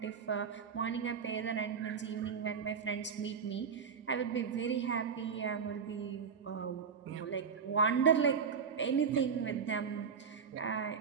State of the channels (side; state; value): left; quieter; 6.3 dB